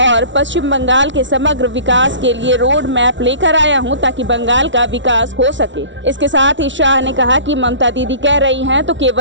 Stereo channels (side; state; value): left; late; 0.55 ms